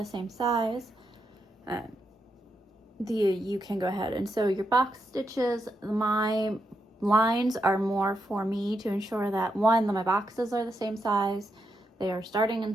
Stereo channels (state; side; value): normal; both; correlation 0.83